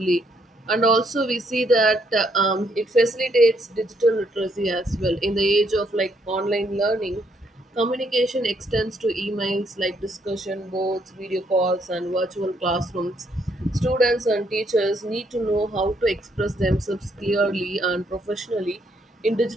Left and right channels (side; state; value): both; normal; correlation 0.72